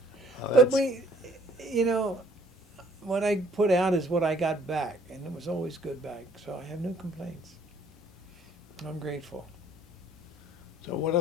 Oh, But that's- what I put out is what I got back. And it was always good back. So I have no complaints. I'm grateful. So what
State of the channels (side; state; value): both; normal; correlation 0.59